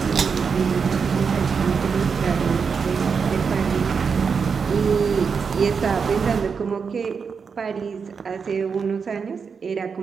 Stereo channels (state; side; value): quieter; left; 5.8 dB